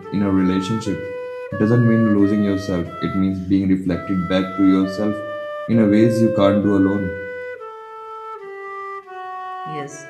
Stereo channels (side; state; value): both; identical; correlation 1.00